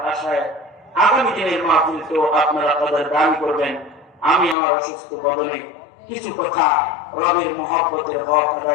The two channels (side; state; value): right; drops out; at 4.5 s